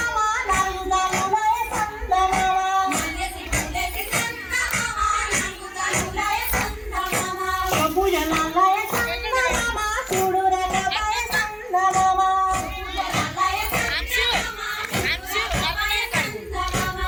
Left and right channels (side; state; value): both; identical; correlation 1.00